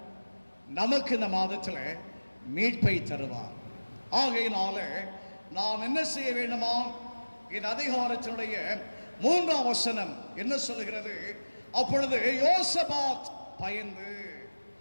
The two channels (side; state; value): both; inverted; correlation -1.00